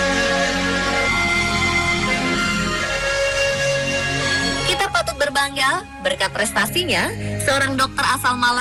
Berbangga, berkat prestasinya, seorang dokter asal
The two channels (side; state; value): both; identical; correlation 1.00